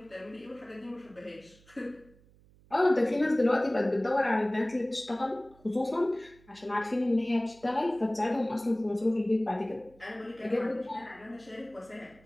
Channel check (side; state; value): right; noise; hum, 28 dB below the sound